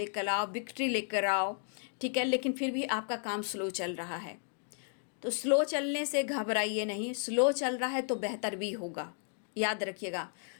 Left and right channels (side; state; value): right; silent; 55 dB below the other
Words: आओ, विक्ट्री लेकर आओ, ठीक है। लेकिन फिर भी आपका काम स्लो चल रहा है, तो स्लो चलने से घबराइए नहीं, स्लो चल रहा है तो बेहतर भी होगा। याद रखिएगा,